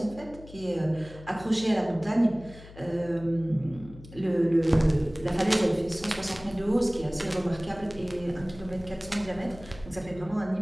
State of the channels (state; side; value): noise; left; hum, 18 dB below the sound